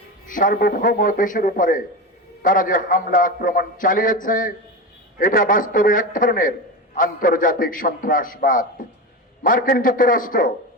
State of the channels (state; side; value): normal; both; correlation 0.22